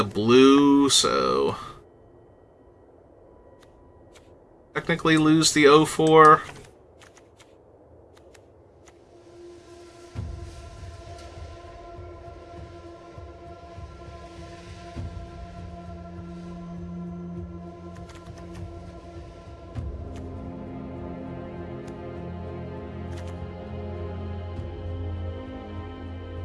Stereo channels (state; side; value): identical; both; correlation 1.00